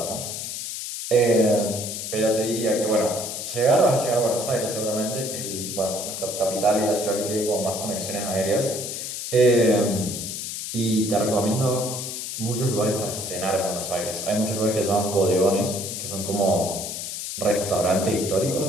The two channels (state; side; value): noise; left; hiss, 6 dB below the sound